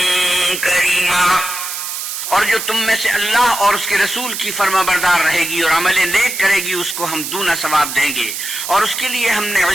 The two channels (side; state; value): right; noise; hiss, 5 dB below the sound